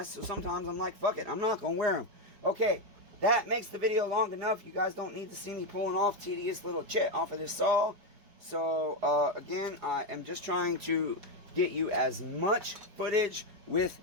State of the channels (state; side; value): late; left; 5.1 ms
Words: so sometimes I'm like, fuck it, I'm not going to wear them. Okay, that makes the video long enough. You guys don't need to see me pulling off tedious little chit off of this saw. So again, I am just trying to get you as much footage with